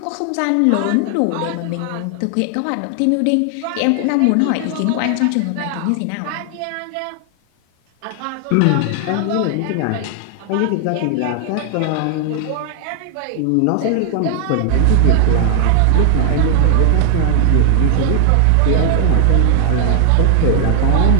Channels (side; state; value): both; different; correlation 0.00